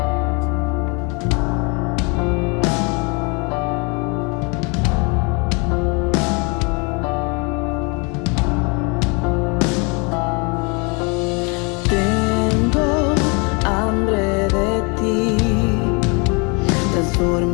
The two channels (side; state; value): right; quieter; 31.5 dB